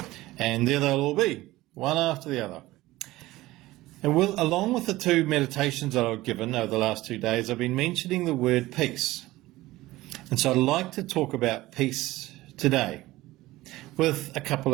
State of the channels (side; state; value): left; quieter; 17.8 dB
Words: and there they'll all be, one after the other. And along with the two meditations that I've given over the last 2 days, I've been mentioning the word peace. And so I'd like to talk about peace today with a couple